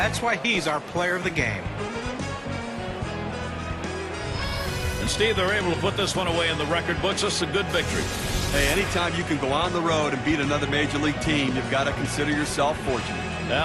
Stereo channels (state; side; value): identical; both; correlation 1.00